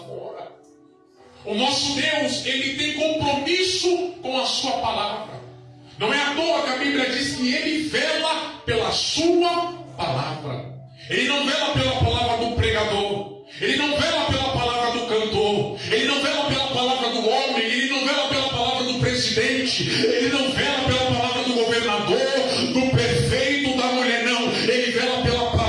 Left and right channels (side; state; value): both; identical; correlation 1.00